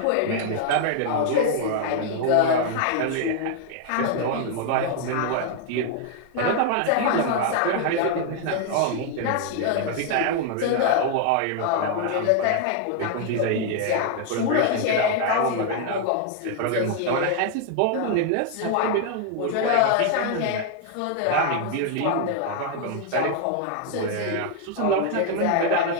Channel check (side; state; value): both; different; correlation 0.00